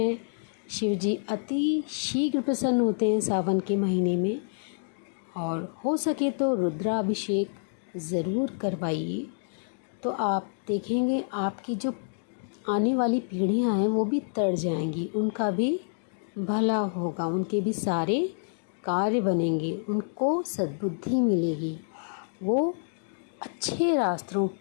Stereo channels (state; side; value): silent; right; digital silence